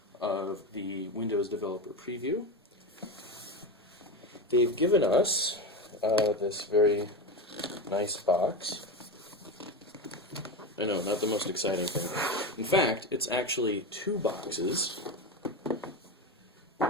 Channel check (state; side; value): normal; both; correlation 0.19